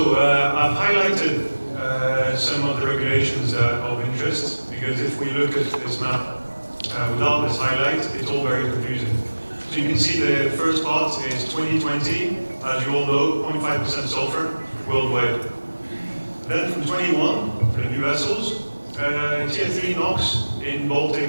I've highlighted some of the regulations that are of interest, because if we look at this map without this highlight, it's all very confusing. So you can see the first part is 2020, as you all know, 0.5% sulfur worldwide. Then from 21, for the new vessels, Tier 3 NOx in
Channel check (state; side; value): inverted; both; correlation -1.00